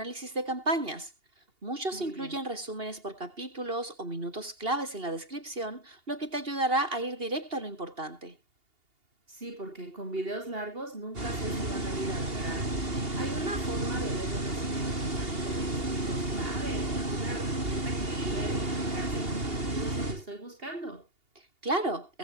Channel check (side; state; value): left; late; 2.8 ms